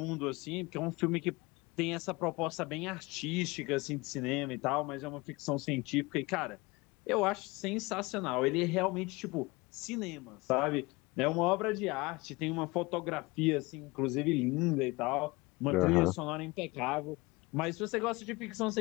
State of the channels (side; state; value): right; quieter; 23.7 dB